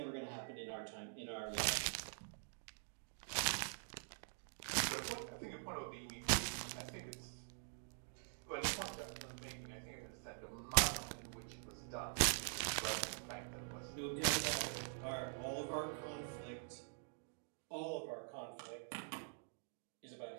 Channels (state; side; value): silent; left; digital silence